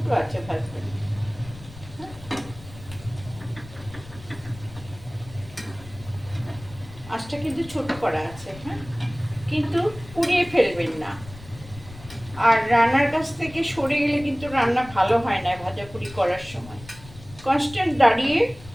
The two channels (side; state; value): left; noise; rumble, 17 dB below the sound